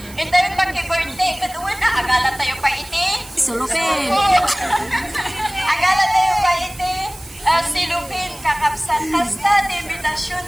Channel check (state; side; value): noise; right; hiss, 19 dB below the sound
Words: Ito yung pagki-birthday, katuwan agala tayo pa iti. Sulupin. Agala tayo pa iti. Silupin, kakapsan. Kasta, di invitasyon